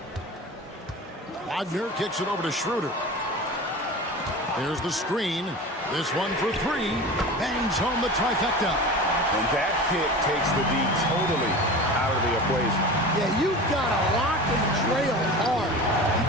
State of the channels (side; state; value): both; normal; correlation 0.33